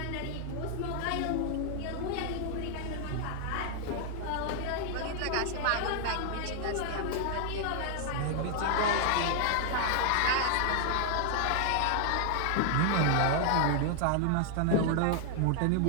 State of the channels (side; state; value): both; different; correlation 0.00